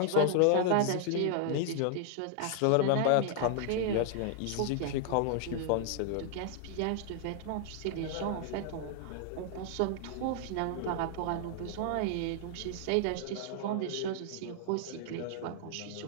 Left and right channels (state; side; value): different; both; correlation 0.00